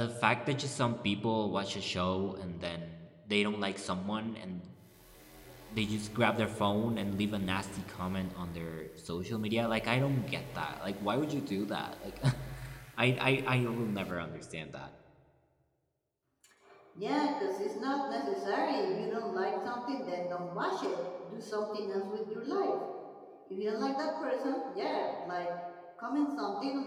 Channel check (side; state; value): both; identical; correlation 1.00